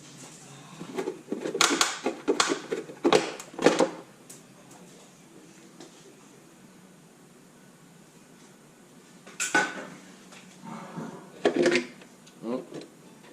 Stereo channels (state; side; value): identical; both; correlation 1.00